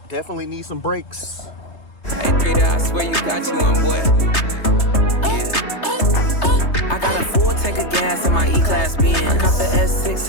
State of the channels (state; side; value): late; right; 3.3 ms